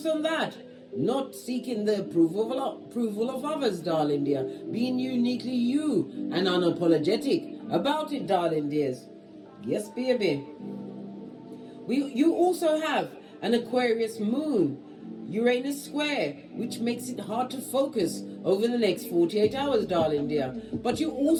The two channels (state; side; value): identical; both; correlation 1.00